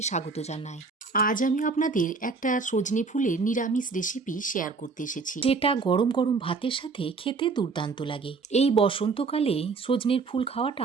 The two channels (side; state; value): left; quieter; 4.4 dB